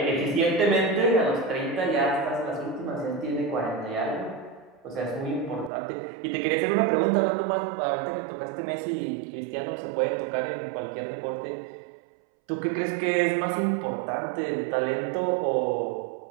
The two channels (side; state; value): left; drops out; at 5.7 s